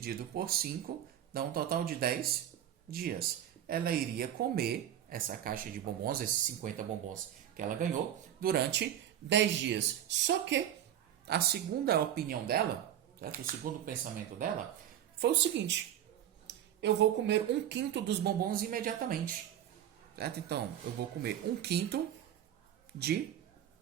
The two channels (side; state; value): left; quieter; 11.0 dB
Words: por 5 dá um total de 10 dias. Ela iria comer essa caixa de bombons, esses 50 bombons que ela ganhou, durante 10 dias. Só que a segunda opinião dela, certo? O segundo pensamento dela, foi o seguinte: eu vou comer 1/5 dos bombons imediatamente. Certo? Então, eu vou comer 1/5 de